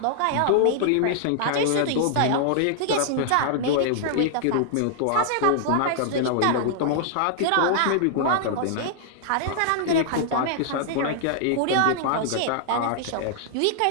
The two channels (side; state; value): both; different; correlation -0.01